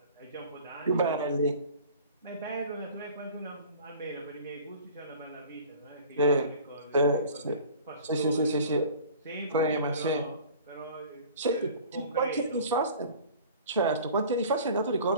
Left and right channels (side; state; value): both; inverted; correlation -0.45